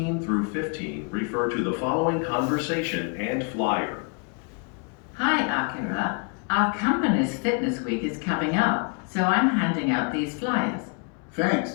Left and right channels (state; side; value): quieter; right; 36.8 dB